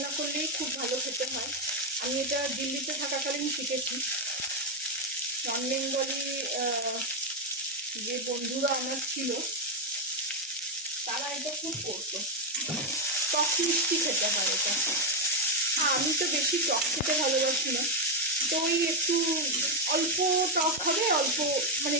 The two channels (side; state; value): both; normal; correlation 0.04